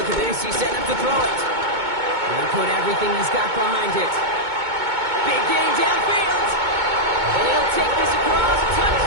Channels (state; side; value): late; left; 2.2 ms